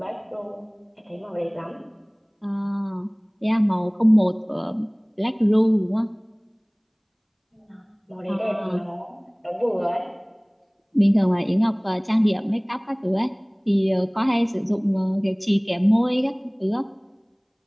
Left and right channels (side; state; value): both; identical; correlation 1.00